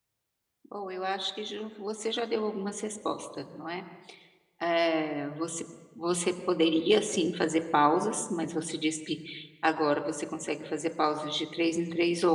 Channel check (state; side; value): identical; both; correlation 1.00